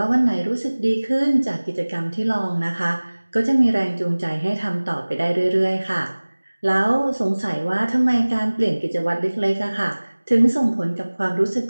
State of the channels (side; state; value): both; inverted; correlation -1.00